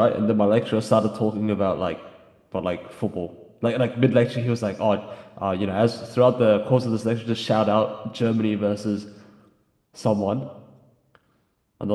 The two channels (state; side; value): identical; both; correlation 1.00